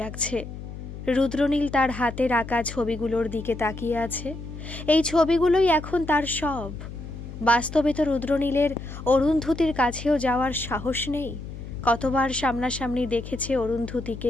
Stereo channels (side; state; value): left; noise; hum, 11 dB below the sound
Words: লাগছে। রুদ্রনীল তার হাতের আঁকা ছবিগুলোর দিকে তাকিয়ে আছে। এই ছবিগুলোই এখন তার সব। বাস্তবে তো রুদ্রনীলের অরুন্ধতির কাছেও যাওয়ার সাহস নেই। কতবার সামনাসামনি দেখেছে